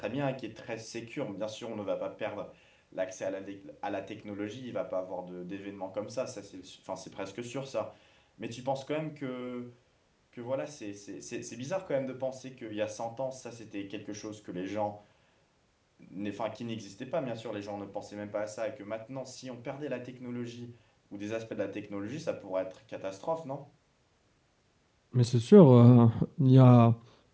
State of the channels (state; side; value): identical; both; correlation 1.00